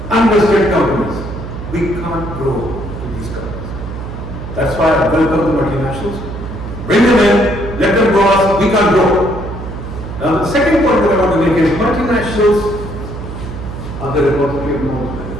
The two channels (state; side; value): noise; right; hum, 9 dB below the sound